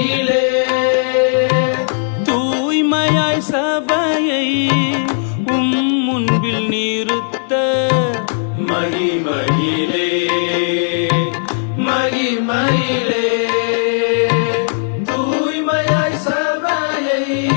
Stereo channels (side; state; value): right; silent; digital silence